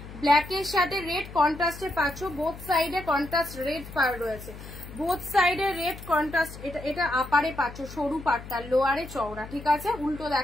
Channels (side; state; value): left; noise; hum, 14 dB below the sound